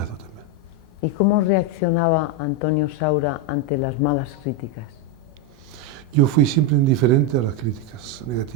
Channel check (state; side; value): normal; both; correlation 0.05